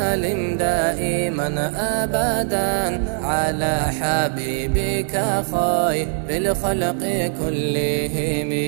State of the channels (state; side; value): silent; left; 65 dB below the other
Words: دائما أبدا على حبيبك خير الخلق كلهم